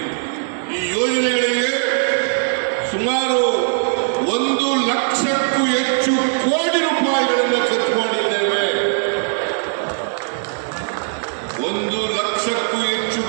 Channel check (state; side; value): silent; left; 66 dB below the other